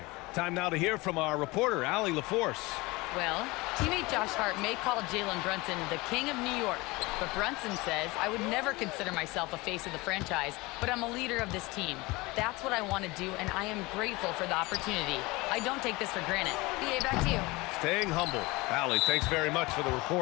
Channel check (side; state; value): right; quieter; 22.9 dB